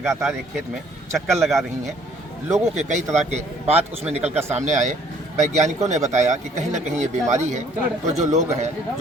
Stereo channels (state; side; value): normal; both; correlation 0.60